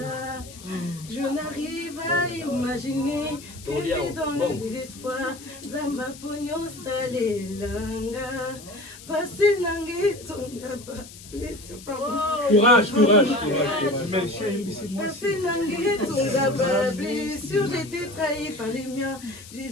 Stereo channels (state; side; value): noise; left; hiss, 17 dB below the sound